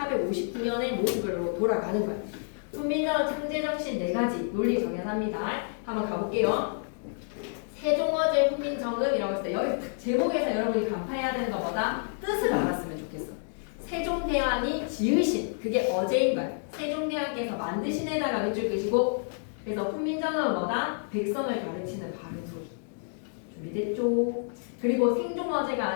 모습으로 돌아가는 거야. 훈민정음 창제 정신 네 가지 논리 정연합니다. 한번 가볼게요. 세종어제 훈민정음이라고 했을 때 여기 제목에서 여러분이 간파해야 되는 것보다 뜻을 알았으면 좋겠어. 세종대왕이 지으신 그게 어제인 거야. 세종대왕께서 만드신 에다가 밑줄 끄시고 그래서 훈민정음은 뭐다? 백성을 가르치는 바른 소리. 준비됐죠? 그리고 생종어제가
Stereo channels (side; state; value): right; silent; digital silence